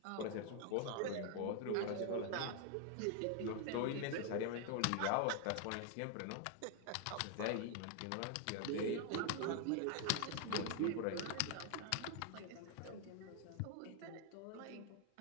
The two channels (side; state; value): both; different; correlation 0.00